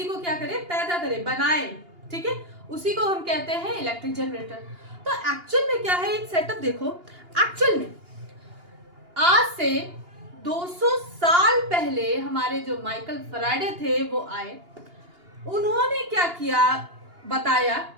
को क्या करे, पैदा करे, बनाए, ठीक है, उसी को हम कहते हैं इलेक्ट्रिक जनरेटर। तो एक्चुअल में क्या है, एक सेटअप देखो। एक्चुअल में आज से 200 साल पहले हमारे जो माइकल फैराडे थे वो आए, उन्होंने क्या किया, बताया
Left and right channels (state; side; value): late; left; 2.8 ms